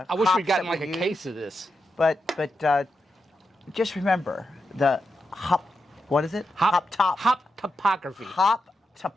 wish we'd gotten like a case of this. But just remember the hop. What is it? Hop topography. Hop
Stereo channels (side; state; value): both; normal; correlation 0.87